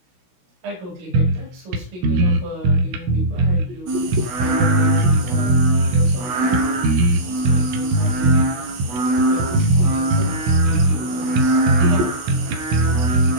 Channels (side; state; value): left; late; 16 ms